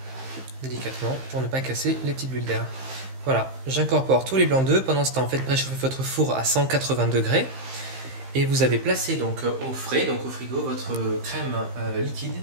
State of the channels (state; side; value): late; left; 15 ms